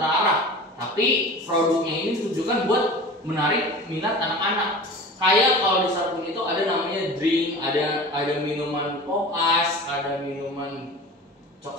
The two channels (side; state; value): both; normal; correlation 0.36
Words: tapi produknya ini ditujukan buat menarik minat anak-anak. Kayak kalau di Starqueen itu ada namanya drink, ada minuman pop ice, ada minuman